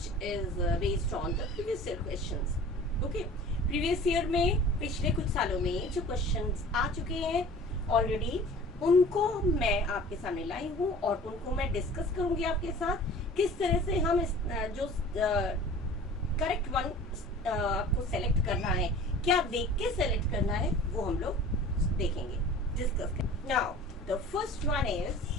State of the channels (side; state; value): both; normal; correlation 0.44